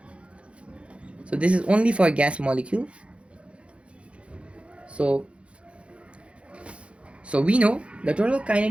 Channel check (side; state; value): left; late; 0.060 ms